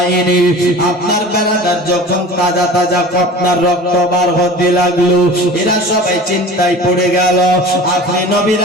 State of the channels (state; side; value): normal; both; correlation 0.39